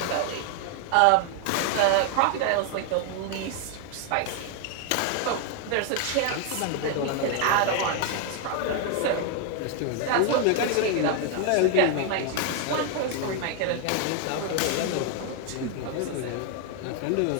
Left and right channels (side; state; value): both; different; correlation 0.00